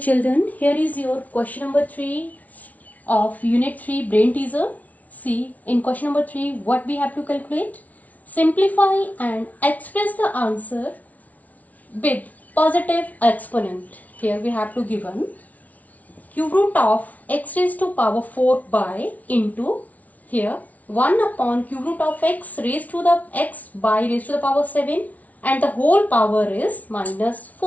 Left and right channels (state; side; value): late; right; 0.072 ms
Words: here is your question number 3 of unit 3 brain teaser. See, in question number 3 what we have to calculate? Simplify and express the answer with positive exponent. Here we have to given cube root of x raised to power 4 by into here 1 upon cube root of x raised to the x by raised to the power 7 and the whole power is minus